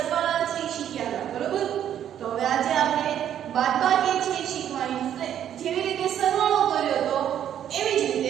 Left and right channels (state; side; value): quieter; left; 10.2 dB